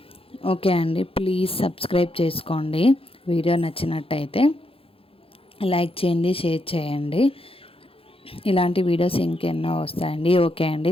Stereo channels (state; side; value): late; right; 0.27 ms